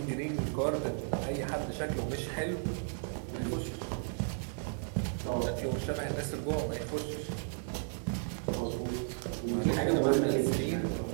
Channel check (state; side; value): silent; left; 55 dB below the other